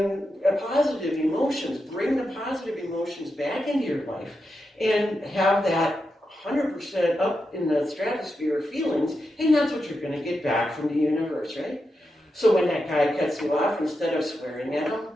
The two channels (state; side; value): normal; both; correlation 0.87